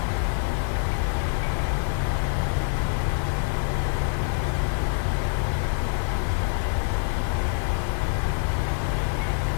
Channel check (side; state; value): right; silent; 61 dB below the other